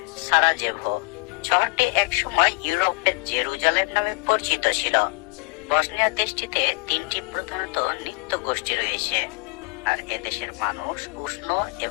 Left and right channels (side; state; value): right; quieter; 29.6 dB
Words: সারাজেভো। শহরটি একসময় ইউরোপের জেরুজালেম নামে পরিচিত ছিল। বসনিয়া দেশটিতে তিনটি প্রধানত নৃত্য গোষ্ঠী রয়েছে, আর এদেশের মানুষ উষ্ণ